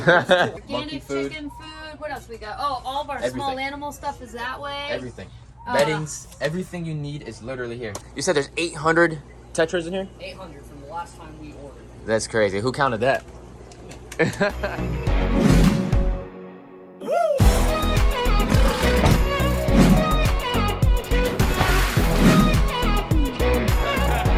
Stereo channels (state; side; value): identical; both; correlation 1.00